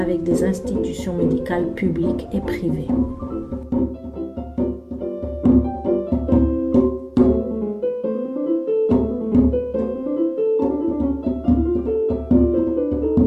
des institutions médicales publiques et privées.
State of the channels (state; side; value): identical; both; correlation 1.00